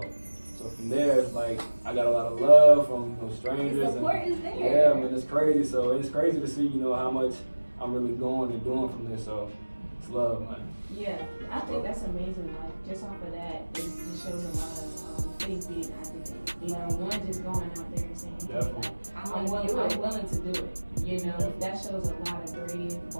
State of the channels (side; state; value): both; inverted; correlation -1.00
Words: So from there, it's like I got a lot of love from strangers. The support is there. Yeah, man, it's crazy. So it's crazy to see, how much I'm really going and doing from this. So it's love, man. Yeah, I think that's amazing. Like, just off of that, it just shows a lot of faith being activated. One just going out there and saying, hey, like, I'm willing to do it. That shows a lot of brave,